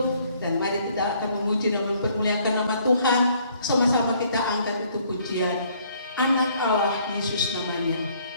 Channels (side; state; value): both; inverted; correlation -0.63